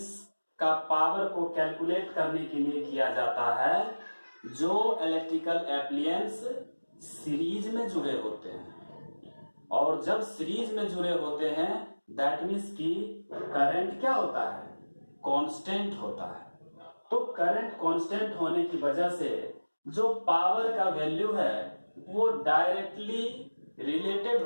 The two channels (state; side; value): inverted; both; correlation -1.00